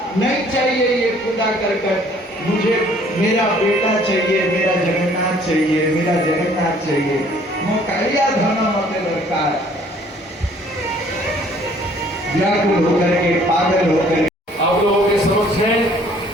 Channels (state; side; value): normal; both; correlation 0.58